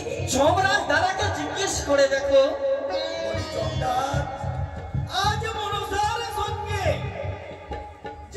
যমরাজ দাদাকে জিজ্ঞেস করে দেখো। জমদার আজ মনসার সঙ্গে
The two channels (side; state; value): both; identical; correlation 1.00